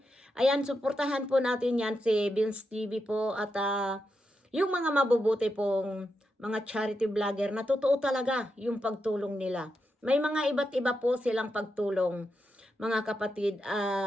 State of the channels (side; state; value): both; normal; correlation 0.86